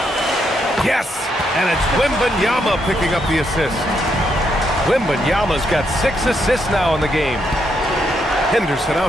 Yes! And it's Wembanyama picking up the assist. Wembanyama's got 6 assists now in the game. Henderson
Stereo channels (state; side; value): normal; both; correlation 0.77